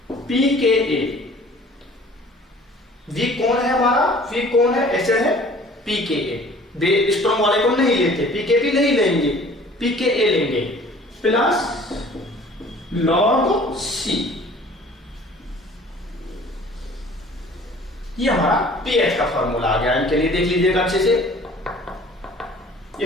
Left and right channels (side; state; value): both; normal; correlation 0.50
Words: pKa। Weak कौन है हमारा, वीक कौन है, एसिड है pKa। स्ट्रॉन्ग वाले को नहीं लेते, pKb नहीं लेंगे, pKa लेंगे, प्लस लॉग C। ये हमारा pH का फॉर्मूला आ गया। इनके लिए देख लीजिएगा अच्छे से,